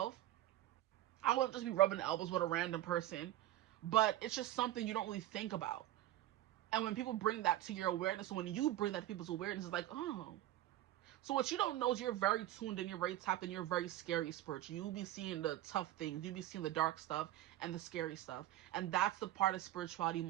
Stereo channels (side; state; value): left; quieter; 14.2 dB